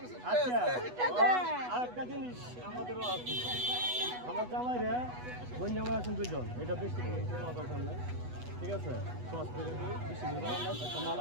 আচ্ছা আরেকটা জিনিস আমাদেরও আছে আমার জামাই রে বোন জামাই আছেন দুইজন এটা বেশি দরকার নাই ঠিক আছে সস করে দিই বেশি একটা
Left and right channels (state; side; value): late; left; 8.1 ms